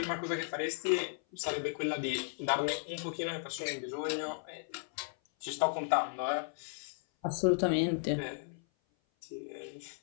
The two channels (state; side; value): silent; right; 54 dB below the other